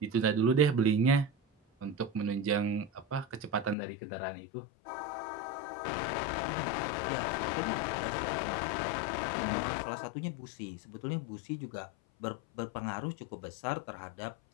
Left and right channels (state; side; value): drops out; right; at 3.8 s